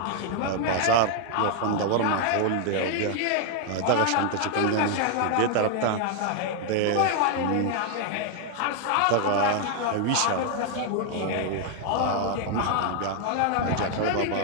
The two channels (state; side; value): different; both; correlation 0.00